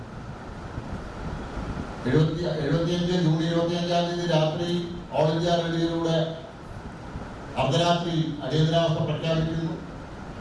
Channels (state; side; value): identical; both; correlation 1.00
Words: 75 ജൂൺ 25 രാത്രി ഓൾ ഇന്ത്യ റേഡിയോയിലൂടെ അർദ്ധരാത്രി അടിയന്തരാവസ്ഥ പ്രഖ്യാപിക്കുന്നു.